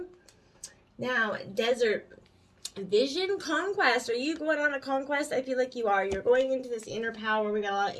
Now, desert. Vision conquest. Are you going on a conquest? I feel like you are. You're going into this inner power. We got a lot of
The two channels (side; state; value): both; identical; correlation 1.00